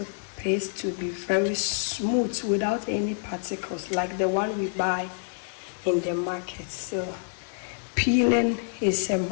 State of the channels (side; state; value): right; silent; digital silence